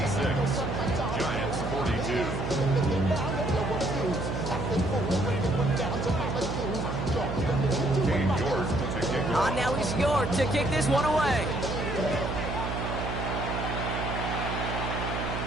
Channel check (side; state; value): right; noise; hum, 4 dB below the sound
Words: Giants 42. On now is York to kick this one away.